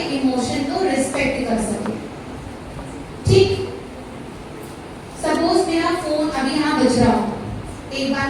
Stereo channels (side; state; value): both; identical; correlation 1.00